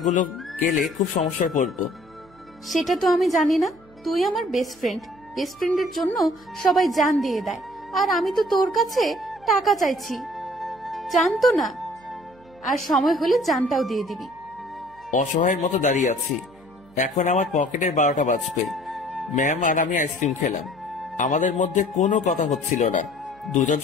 গেলে খুব সমস্যায় পড়বো। সেটা তো আমি জানি না। তুই আমার বেস্ট ফ্রেন্ড। বেস্ট ফ্রেন্ডের জন্য সবাই জান দিয়ে দেয়, আর আমি তো তোর কাছে টাকা চাইছি। জানতো না, আর সময় হলে জানটাও দিয়ে দিবি। অসহায়ের মতো দাঁড়িয়ে আছি। এখন আমার পকেটের 12টা বাজবে। ম্যাম আর আমি আইসক্রিম খেলাম। আমাদের মধ্যে কোনো কথা হচ্ছিল না। দুজন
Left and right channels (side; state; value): right; noise; hum, 27 dB below the sound